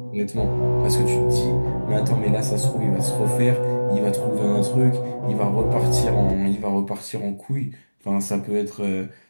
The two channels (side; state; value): both; inverted; correlation -1.00